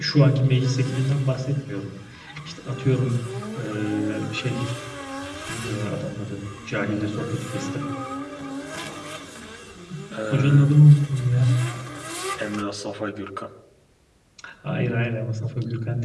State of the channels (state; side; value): identical; both; correlation 1.00